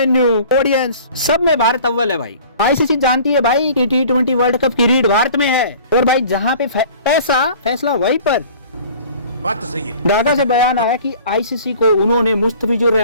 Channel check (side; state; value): both; inverted; correlation -0.47